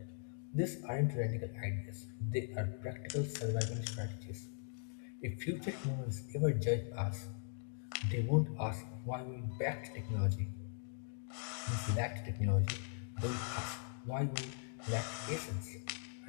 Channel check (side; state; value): right; silent; digital silence